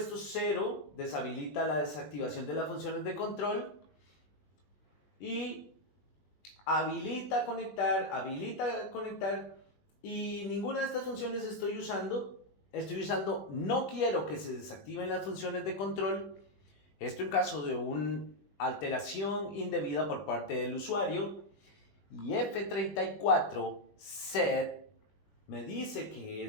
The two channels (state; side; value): late; right; 20 ms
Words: 0, deshabilita la desactivación de las funciones de control, y habilita conectar, y ninguna de estas funciones estoy usando. estoy usando no quiero que se desactiven las funciones de control. Esto en caso de una alteración indebida por parte del usuario. Y F34 set me dice que